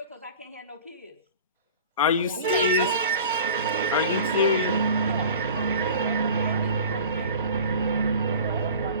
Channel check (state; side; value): inverted; both; correlation -0.41